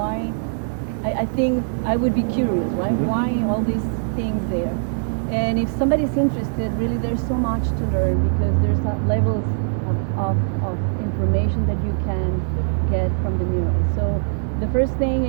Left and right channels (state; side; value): silent; left; digital silence